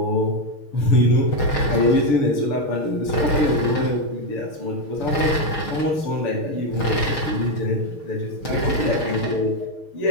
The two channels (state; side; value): late; right; 6.4 ms